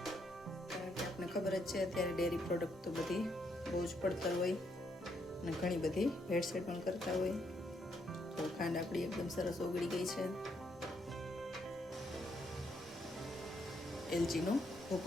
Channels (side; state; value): both; normal; correlation 0.74